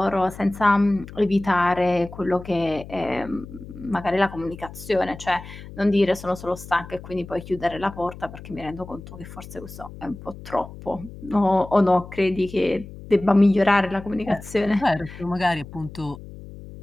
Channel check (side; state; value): left; noise; hum, 15 dB below the sound